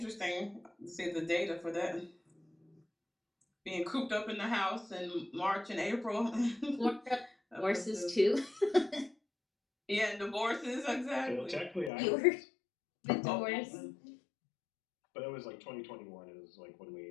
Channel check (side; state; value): right; drops out; at 11.9 s